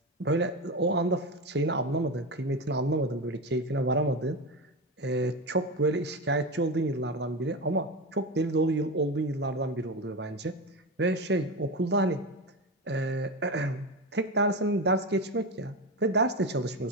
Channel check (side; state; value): both; normal; correlation 0.20